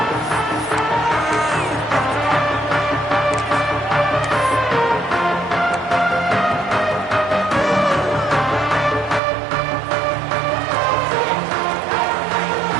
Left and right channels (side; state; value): left; drops out; at 9.2 s